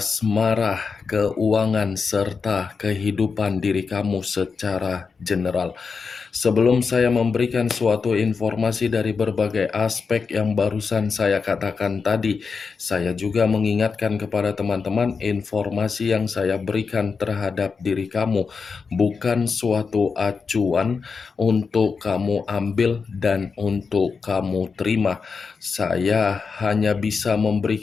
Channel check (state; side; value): quieter; right; 5.2 dB